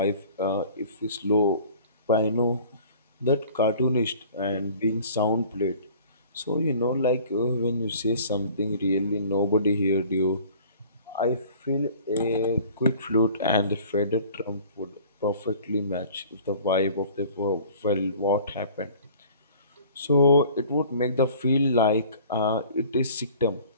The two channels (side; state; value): both; inverted; correlation -0.49